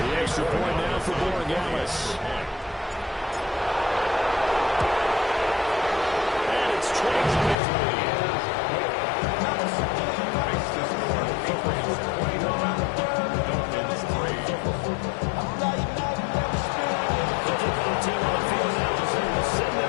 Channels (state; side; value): drops out; right; at 7.6 s